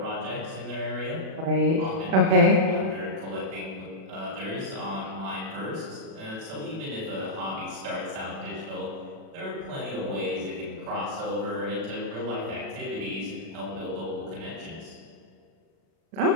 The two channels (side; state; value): left; late; 36 ms